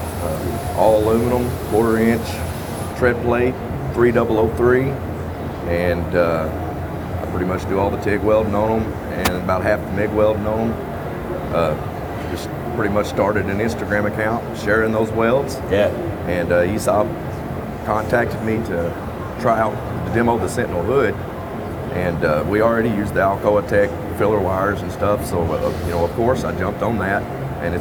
all aluminum, 1/4 inch tread plate, 3003, and I pretty much do all the TIG welding on them and about half the MIG welding on them. Just pretty much started an Instagram account sharing those welds. Yeah. And ESAB contacted me to try out to demo the Sentinel hood, and we already used the Alcoa Tech filler wires and stuff, so of course I jumped on that, and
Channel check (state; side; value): identical; both; correlation 1.00